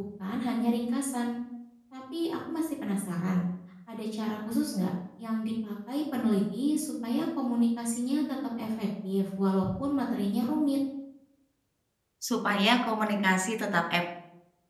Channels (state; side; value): identical; both; correlation 1.00